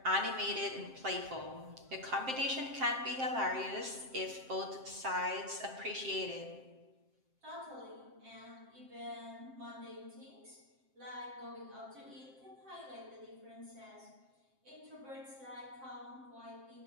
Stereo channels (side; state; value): left; late; 7.6 ms